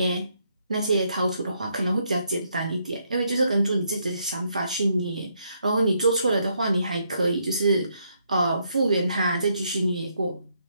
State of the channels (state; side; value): inverted; both; correlation -0.75